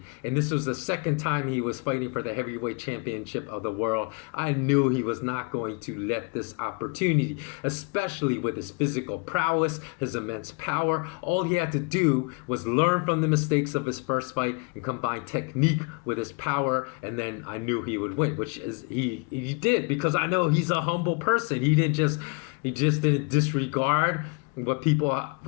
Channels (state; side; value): quieter; right; 30.8 dB